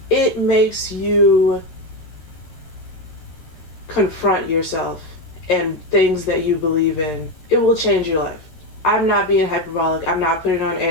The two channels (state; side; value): late; right; 13 ms